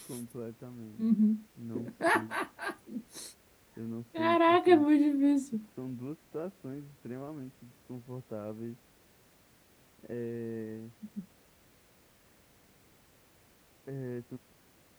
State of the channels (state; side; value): identical; both; correlation 1.00